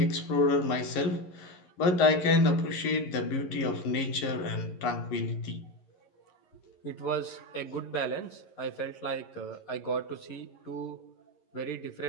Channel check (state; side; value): late; right; 11 ms